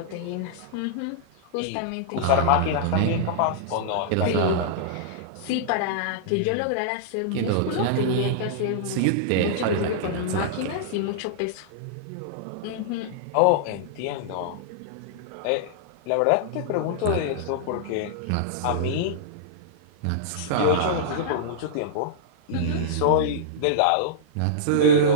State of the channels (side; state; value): both; different; correlation -0.02